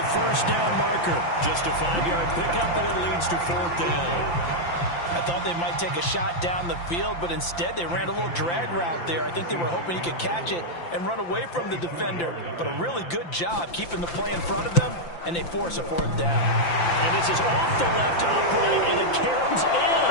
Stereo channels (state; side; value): late; right; 5.8 ms